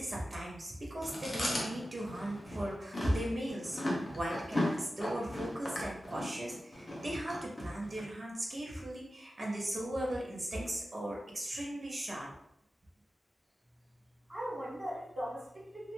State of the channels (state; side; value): normal; both; correlation 0.93